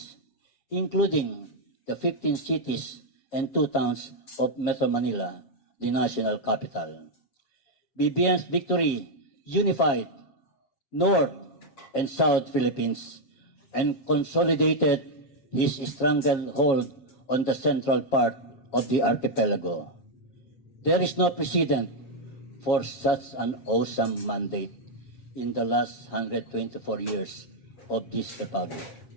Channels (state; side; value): late; right; 7.4 ms